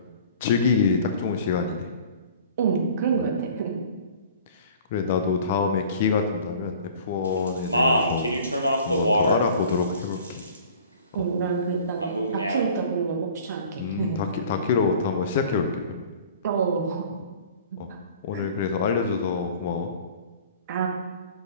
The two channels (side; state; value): both; inverted; correlation -0.47